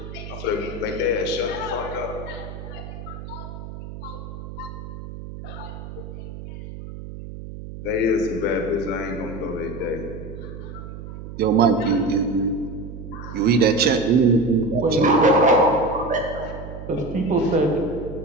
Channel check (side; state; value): right; noise; hum, 11 dB below the sound